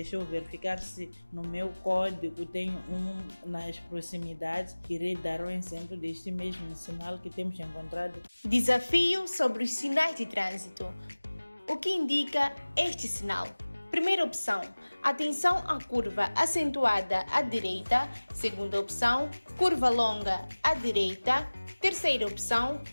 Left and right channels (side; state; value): both; inverted; correlation -1.00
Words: eu verificar se no meu código tem um nas proximidades. Irei dar um exemplo deste mesmo sinal que temos encontrado. Desafio sobre os sinais de trânsito. O que indica este sinal? Primeira opção, atenção à curva acentuada à direita. Segunda opção, curva longa à direita. Terceira opção,